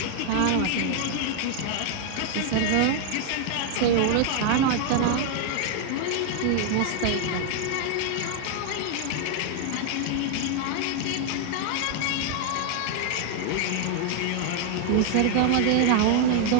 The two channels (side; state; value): both; different; correlation 0.00